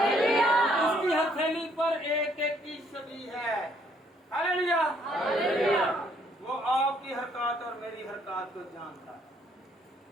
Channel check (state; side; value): normal; both; correlation 0.67